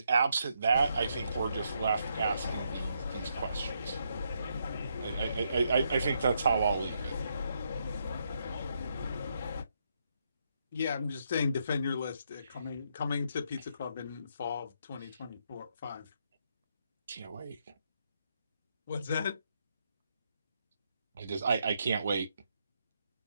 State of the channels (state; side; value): inverted; both; correlation -0.78